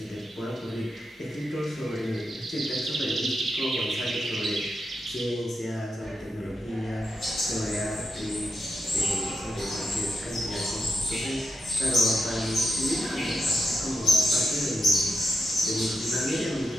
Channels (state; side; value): normal; both; correlation 0.85